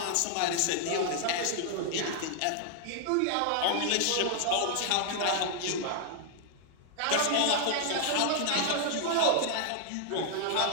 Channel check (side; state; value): both; different; correlation 0.00